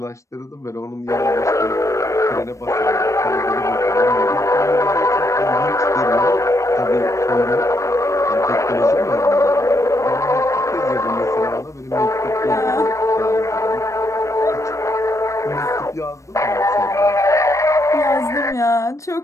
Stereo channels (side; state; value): right; late; 0.15 ms